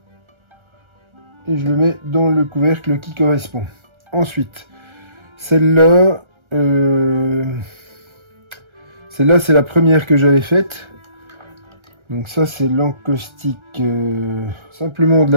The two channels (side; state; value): left; late; 1.3 ms